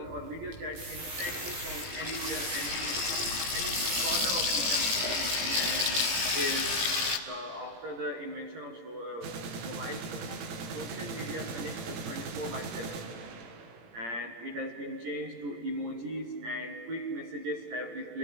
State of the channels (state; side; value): late; left; 18 ms